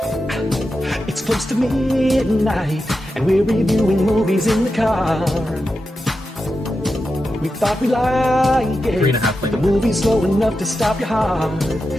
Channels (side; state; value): both; normal; correlation 0.90